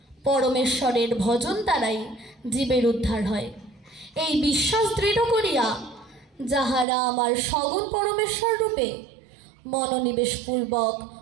পরমেশ্বরের ভজন দ্বারাই জীবের উদ্ধার হয়। এই বিশ্বাস দৃঢ় করিয়া যাহারা আমার সগুণ পরমেশ্বর রূপে মনোনিবেশ পূর্বক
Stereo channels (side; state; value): left; drops out; at 6.9 s